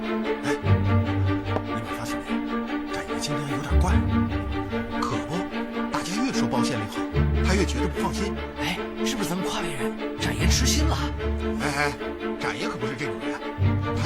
今天有点怪，可不，大家越说包县令好，他越觉得不放心。哎，是不是咱们夸别人，展爷痴心了？哎，展爷可不是这种人，他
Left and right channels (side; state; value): both; identical; correlation 1.00